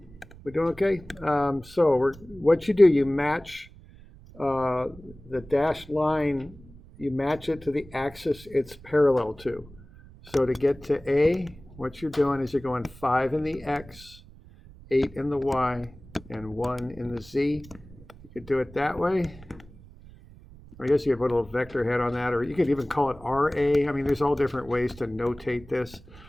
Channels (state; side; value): noise; right; rumble, 21 dB below the sound